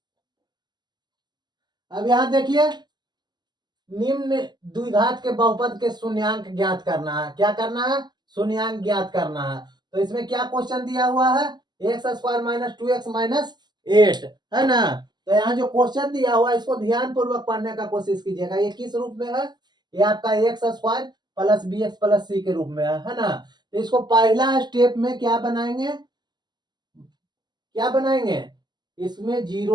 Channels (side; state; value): left; late; 0.21 ms